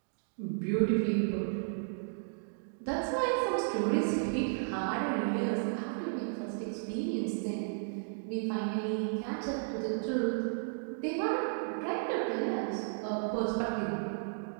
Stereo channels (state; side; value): silent; left; digital silence